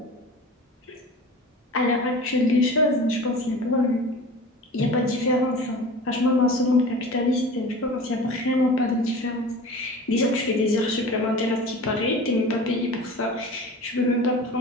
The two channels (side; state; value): both; normal; correlation 0.37